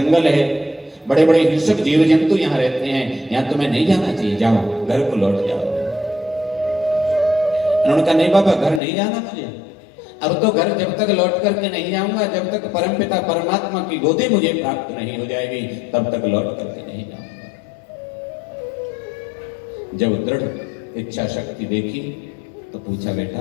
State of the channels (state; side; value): drops out; right; at 8.8 s